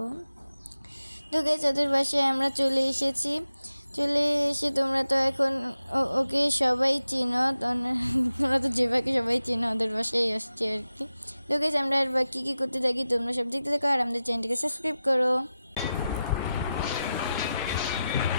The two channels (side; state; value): both; inverted; correlation -0.92